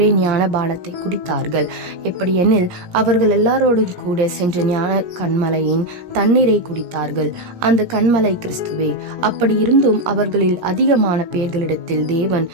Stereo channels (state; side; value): late; left; 17 ms